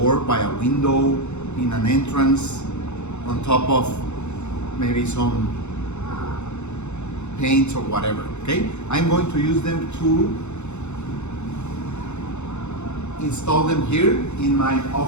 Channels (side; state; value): right; late; 0.82 ms